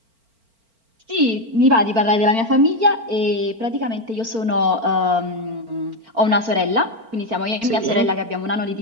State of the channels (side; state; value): left; late; 4.4 ms